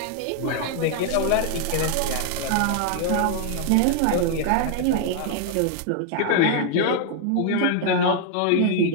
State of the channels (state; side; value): different; both; correlation 0.00